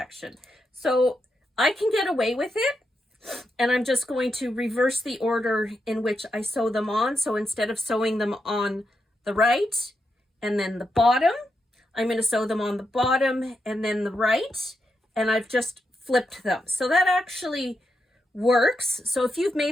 So I can get away with it, and I'm just going to reverse the order in which I sew them on. So instead of sewing them on the right and then the bottom, I'm going to sew them on the bottom and then the right, and I've just flipped them. So that actually works. So if you've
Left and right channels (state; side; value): normal; both; correlation 0.84